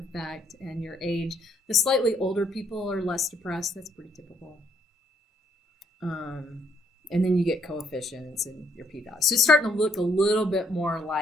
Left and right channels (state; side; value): normal; both; correlation 0.69